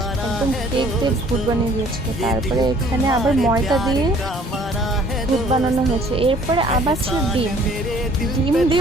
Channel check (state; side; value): normal; both; correlation 0.56